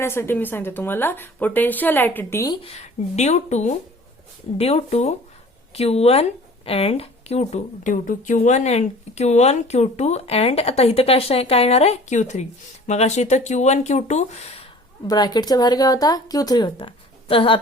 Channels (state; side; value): normal; both; correlation 0.46